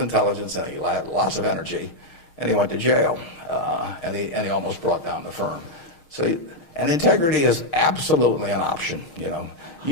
intelligence and he had lots of energy, and he went to jail, and he almost brought down the firm. So, and integrity is absolutely an option.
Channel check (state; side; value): late; right; 6.5 ms